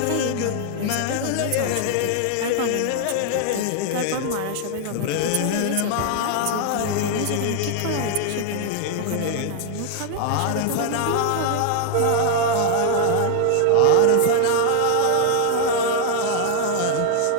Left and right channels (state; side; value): different; both; correlation 0.00